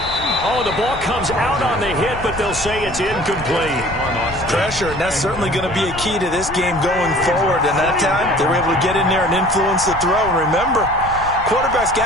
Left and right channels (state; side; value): noise; left; rumble, 13 dB below the sound